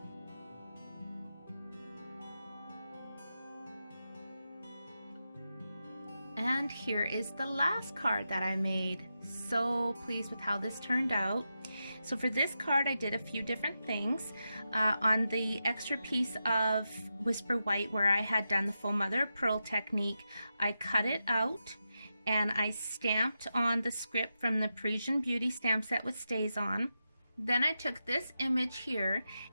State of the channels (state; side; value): inverted; both; correlation -0.88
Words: And here is the last card that I made. So pleased with how this turned out. So for this card I did a few different things. On the extra piece of Whisper White where I had done the Faux Mother of Pearl technique, I cut it out and I stamped on the script from the Parisian Beauty stamp set with stays on. Then I took this image here